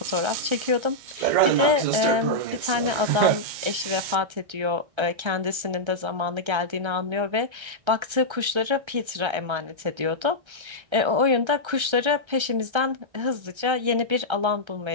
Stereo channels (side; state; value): left; late; 1.3 ms